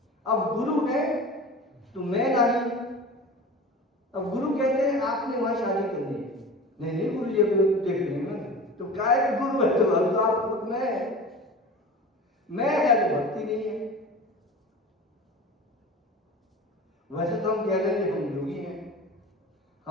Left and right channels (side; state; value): both; normal; correlation 0.35